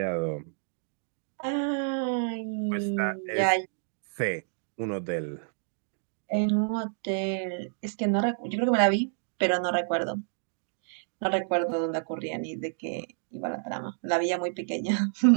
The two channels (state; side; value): silent; left; digital silence